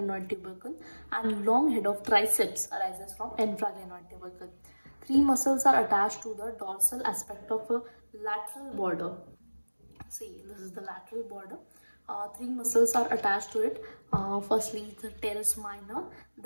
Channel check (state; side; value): inverted; both; correlation -1.00